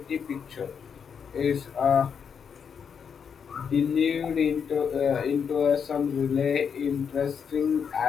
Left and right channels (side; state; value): right; quieter; 6.9 dB